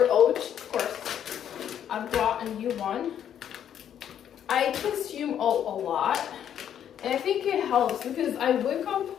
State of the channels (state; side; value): quieter; right; 9.6 dB